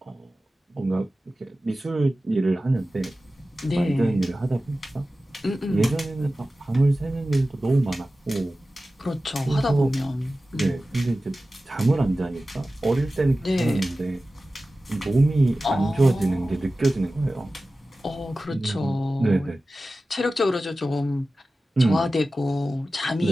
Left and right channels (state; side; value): normal; both; correlation 0.95